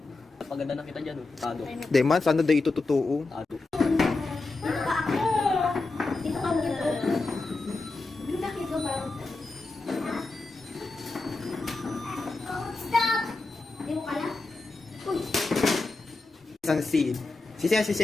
Paganda na kita dyan, tado. Di man, sana daw ito totoo. Tado. Sensi. Si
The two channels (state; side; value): quieter; right; 3.4 dB